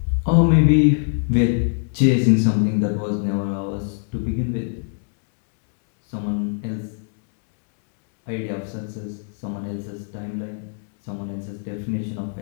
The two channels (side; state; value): right; silent; 60 dB below the other